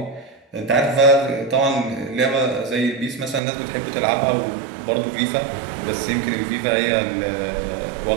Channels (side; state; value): left; drops out; at 3.4 s